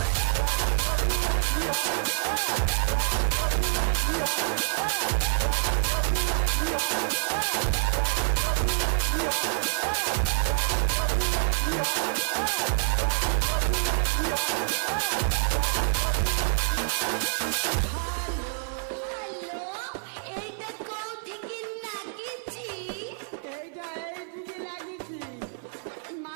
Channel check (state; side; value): silent; left; 56 dB below the other